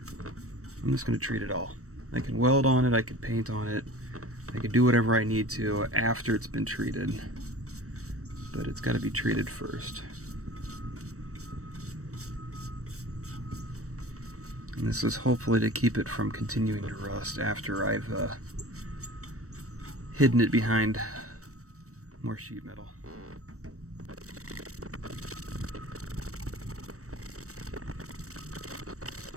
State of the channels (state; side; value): late; left; 0.65 ms